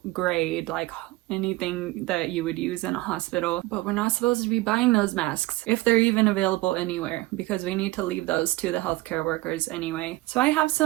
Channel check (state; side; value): quieter; left; 19.7 dB